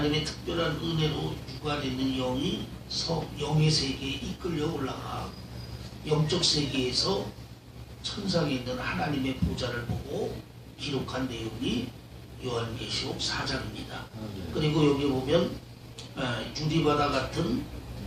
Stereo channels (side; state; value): both; identical; correlation 1.00